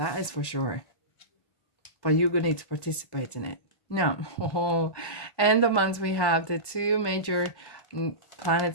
is for sure. But you're going to need to participate in it. Now, end of month we have the 2 major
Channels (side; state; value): right; late; 1.2 ms